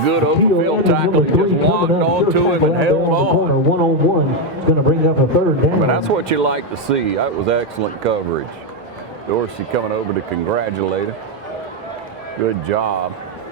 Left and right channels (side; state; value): both; normal; correlation 0.04